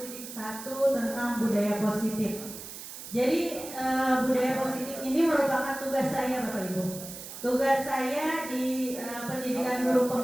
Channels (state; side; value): noise; right; hiss, 11 dB below the sound